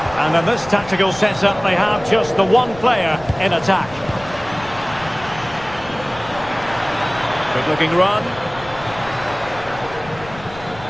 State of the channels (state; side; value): noise; left; rumble, 18 dB below the sound